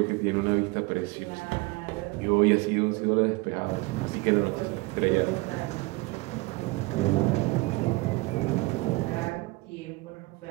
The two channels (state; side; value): quieter; left; 24.0 dB